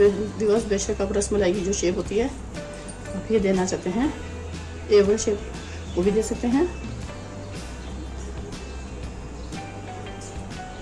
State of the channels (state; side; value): identical; both; correlation 1.00